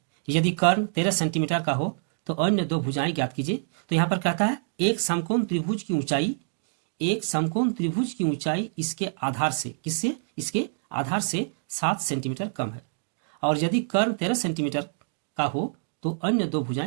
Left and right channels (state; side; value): silent; left; digital silence